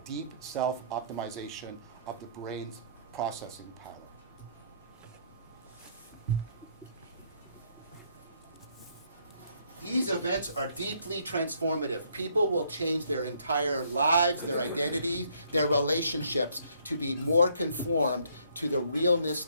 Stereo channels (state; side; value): inverted; both; correlation -0.67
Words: deep self-optimization of the brain's processing power. These events are deeply transformative. People will change their entire lives, their identities, their relationships to be more conformed to the realness